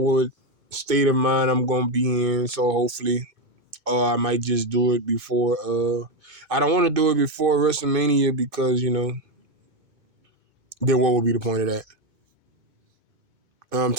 state of mind I'm gonna be in. So hopefully, or I might just do it before. I don't want to do it before WrestleMania because then what would be the point of that? I'm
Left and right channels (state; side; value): late; left; 2.5 ms